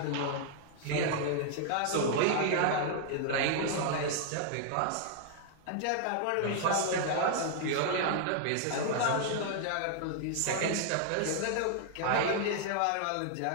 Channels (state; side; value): different; both; correlation 0.00